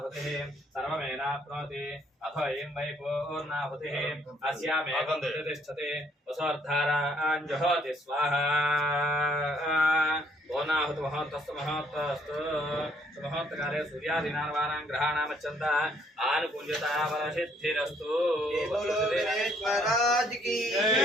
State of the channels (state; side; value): normal; both; correlation 0.65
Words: సర్వమేనాప్నోతి అథో అయం వై పూర్ణాహుతిః అస్యామేకం తిష్టతి వసోర్ధారాన్ జుహోతి స్వాహా. పూర్ణాహుతి మహోత్తస్తు మహోత్తస్తు సుమహోత్తకాలే సూర్యాదీనార్వాణాం గ్రహాణామచ్చంత ఆనుకుంజత వరసిద్ధిరస్తు.